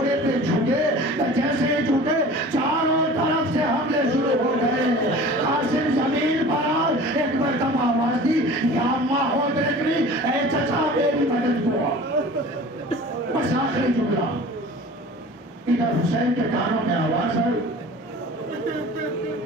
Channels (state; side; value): normal; both; correlation 0.41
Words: پہ جھکے. جیسے ہی جھکے چاروں طرف سے حملے شروع ہو گئے. قاسم زمین پر آئے. ایک مرتبہ آواز دی یا اماں ہو دیکھنی اے چچا میری مدد کو. بس آخری جملہ. ادھر حسین کے کانوں میں آواز آئی